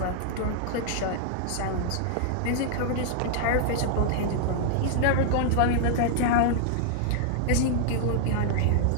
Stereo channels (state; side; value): different; both; correlation -0.01